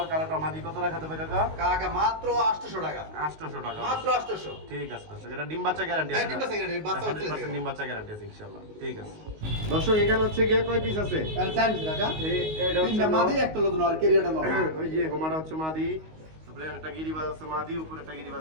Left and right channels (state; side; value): late; left; 19 ms